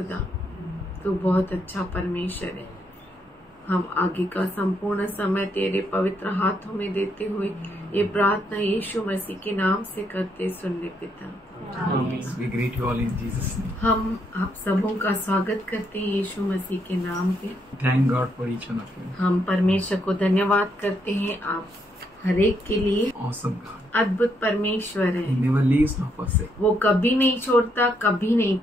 तो बहुत अच्छा परमेश्वर है। हम आगे का संपूर्ण समय तेरे पवित्र हाथों में देते हुए ये प्रार्थना यीशु मसीह के नाम से करते सुन ले पिता। We greet you all in Jesus' name. हम आप सबों का स्वागत करते हैं यीशु मसीह के नाम पे। Thank God for each one of you. हम परमेश्वर को धन्यवाद करते हैं आप हर एक के लिए। Awesome God. अद्भुत परमेश्वर है। He never leaves nor forsakes. वो कभी नहीं छोड़ता, कभी नहीं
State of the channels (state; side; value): normal; both; correlation 0.76